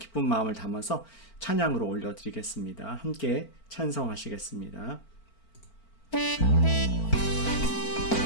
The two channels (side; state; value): right; late; 4.4 ms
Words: 마음을 담아서 찬양으로 올려드리겠습니다. 함께 찬송하시겠습니다.